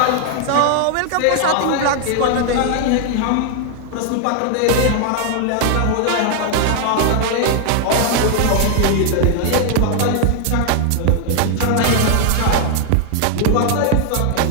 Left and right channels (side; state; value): both; different; correlation 0.00